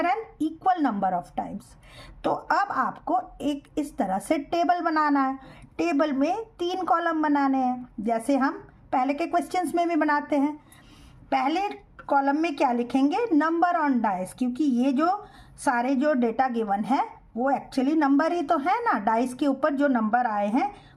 an equal number of times. तो अब आपको एक इस तरह से टेबल बनाना है। टेबल में 3 कॉलम बनाने हैं, जैसे हम पहले के क्वेश्चंस में भी बनाते हैं। पहले कॉलम में क्या लिखेंगे? नंबर ऑन डाइस, क्योंकि ये जो सारे जो डेटा गिवन है वो एक्चुअली नंबर ही तो है ना। डाइस के ऊपर जो नंबर आए हैं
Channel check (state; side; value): identical; both; correlation 1.00